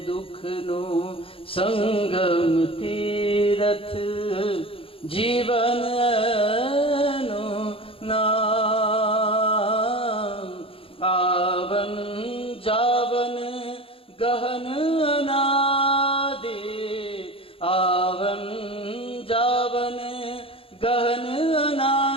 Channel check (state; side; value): late; right; 0.27 ms